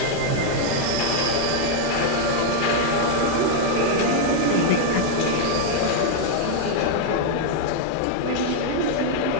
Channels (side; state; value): both; different; correlation 0.00